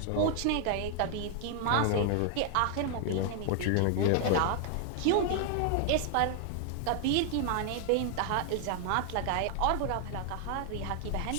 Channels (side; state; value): both; different; correlation 0.00